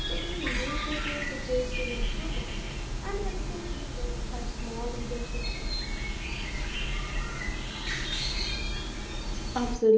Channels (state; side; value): identical; both; correlation 1.00